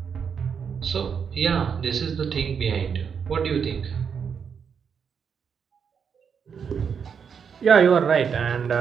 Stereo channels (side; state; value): left; quieter; 6.8 dB